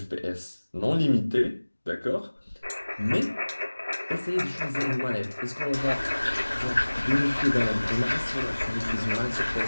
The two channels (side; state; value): both; inverted; correlation -1.00